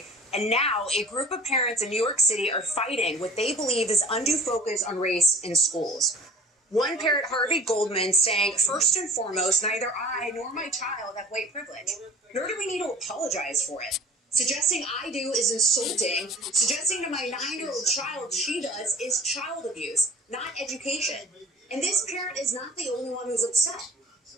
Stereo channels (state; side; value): normal; both; correlation 0.46